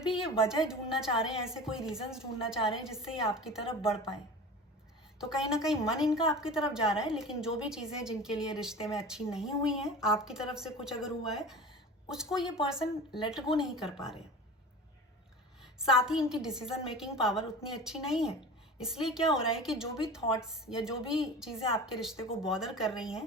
ये वजह ढूंढना चाह रहे हैं, ऐसे कोई रीजंस ढूंढना चाह रहे हैं जिससे ये आपकी तरफ बढ़ पाए। तो कहीं ना कहीं मन इनका आपकी तरफ जा रहा है, लेकिन जो भी चीज़ें जिनके लिए रिश्ते में अच्छी नहीं हुई हैं, आपकी तरफ से कुछ अगर हुआ है, उसको ये पर्सन लेट गो नहीं कर पा रहे। साथ ही इनकी डिसीजन मेकिंग पावर उतनी अच्छी नहीं है, इसलिए क्या हो रहा है कि जो भी थॉट्स या जो भी चीज़ें आपके रिश्ते को बॉदर कर रही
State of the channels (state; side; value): normal; both; correlation 0.35